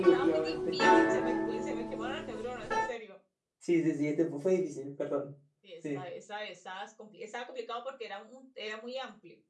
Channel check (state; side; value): identical; both; correlation 1.00